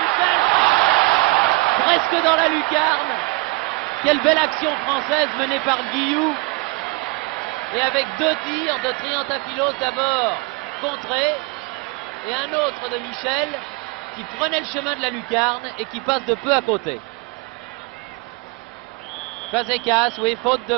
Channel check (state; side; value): quieter; left; 25.4 dB